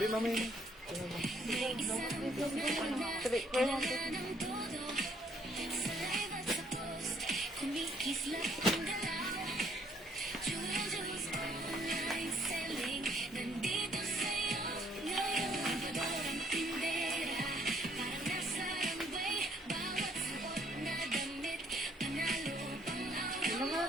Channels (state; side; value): normal; both; correlation 0.65